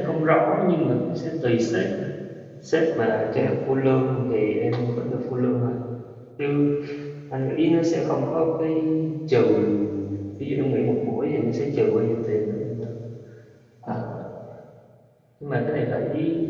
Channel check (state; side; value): identical; both; correlation 1.00